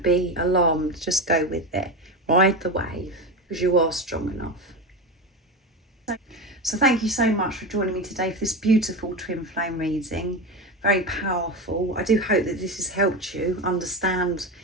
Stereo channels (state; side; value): normal; both; correlation 0.20